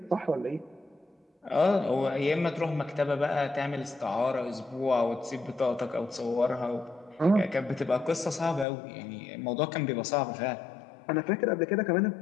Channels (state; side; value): drops out; right; at 8.7 s